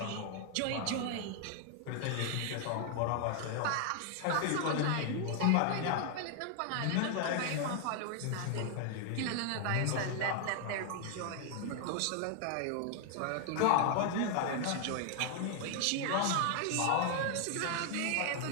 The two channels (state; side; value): different; both; correlation 0.00